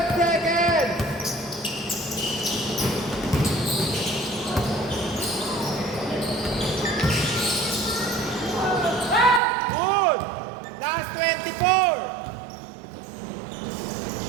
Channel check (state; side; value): drops out; left; at 9.4 s